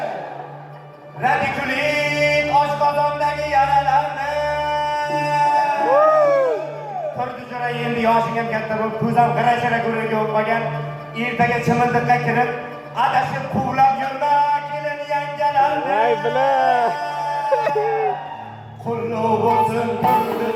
ko'zam g'ira-shira go'riga o'tmagan. Ertaga chimildiqqa kirib, adashib quvlab yurma kelin yangalarni. Ay bila. Qulluq bo'lsin, qulluq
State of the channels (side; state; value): both; identical; correlation 1.00